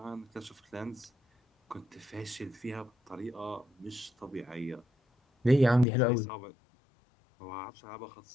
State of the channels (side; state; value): right; drops out; at 5.9 s